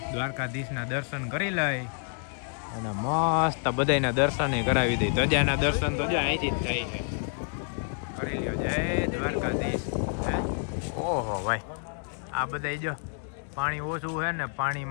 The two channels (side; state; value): right; silent; 59 dB below the other